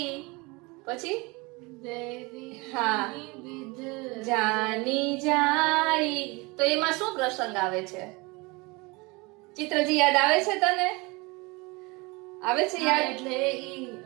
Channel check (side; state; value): left; quieter; 25.9 dB